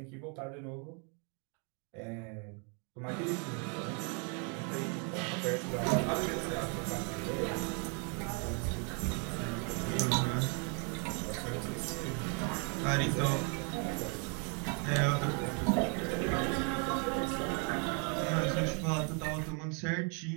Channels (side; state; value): left; quieter; 37.8 dB